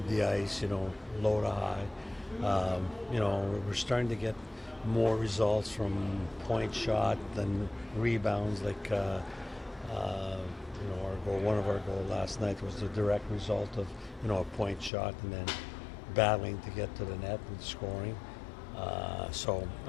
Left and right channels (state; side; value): drops out; right; at 14.9 s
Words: the ice, low to high. We're starting to get more results from point shot than rebounds. One of our goals last night was the direct result of a point shot and then battling to get to the net and scoring. So